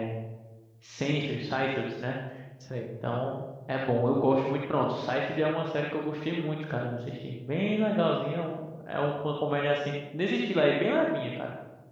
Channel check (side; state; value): both; identical; correlation 1.00